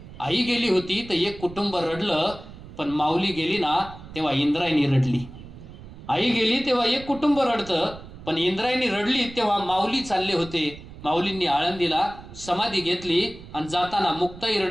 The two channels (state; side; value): noise; right; rumble, 16 dB below the sound